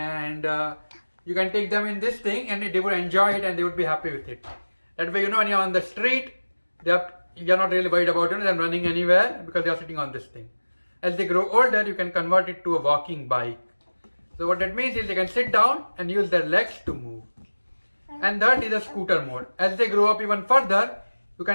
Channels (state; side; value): inverted; both; correlation -1.00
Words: you can take them in this thing and they would enjoy it and they would be happy with it. That way, when you're on the street, you're not really worried about them running anywhere because they are sitting on this thing. As they grow older, you can convert it to a walking bike. So what that means is they can sit down and use their legs to move. And that is a scooter mode. As they grow up even further, you